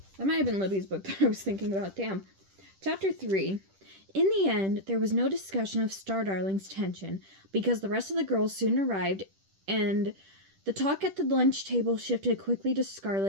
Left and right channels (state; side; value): late; left; 10 ms